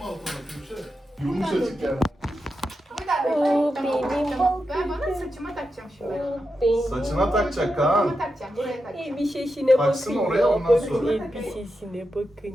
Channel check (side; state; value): both; normal; correlation 0.88